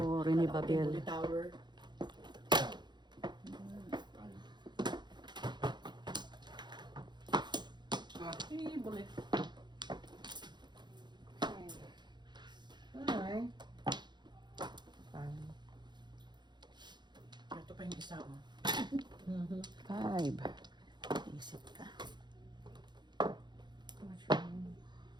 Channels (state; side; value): late; left; 0.21 ms